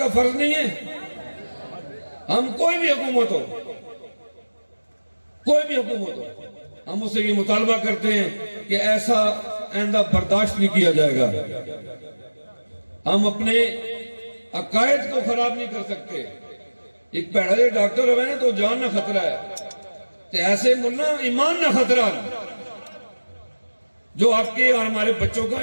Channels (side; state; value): both; inverted; correlation -1.00